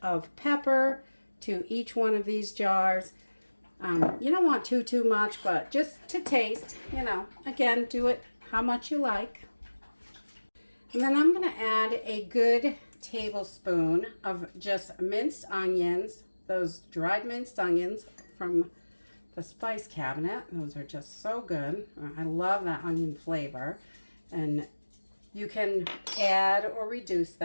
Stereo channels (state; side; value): inverted; both; correlation -1.00